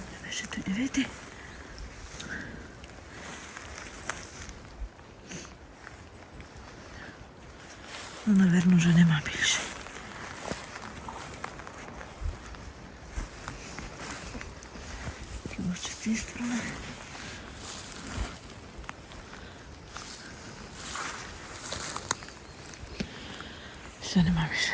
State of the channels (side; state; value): both; identical; correlation 1.00